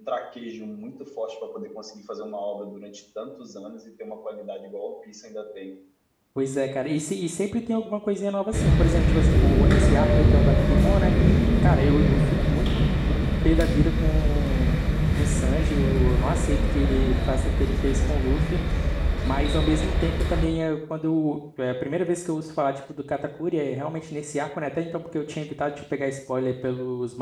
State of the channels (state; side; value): identical; both; correlation 1.00